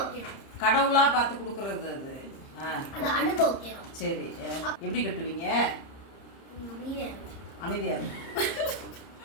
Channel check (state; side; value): late; right; 30 ms